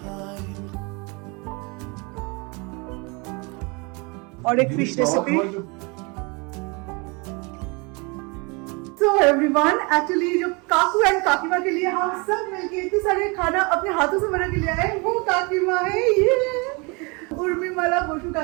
और एक fish recipe. So everyone, actually जो काकू एंड काकीमा के लिए हम सब मिलके इतने सारे खाना अपने हाथों से बना के ले आए, वो काकीमा है ये उर्मिमाला बोशु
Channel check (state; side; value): quieter; left; 29.5 dB